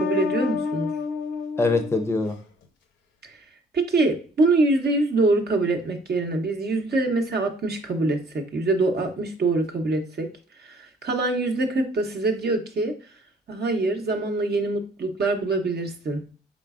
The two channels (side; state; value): both; normal; correlation 0.58